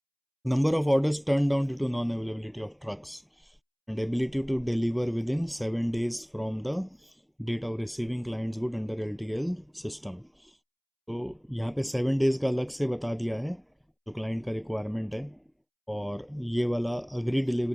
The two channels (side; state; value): both; identical; correlation 1.00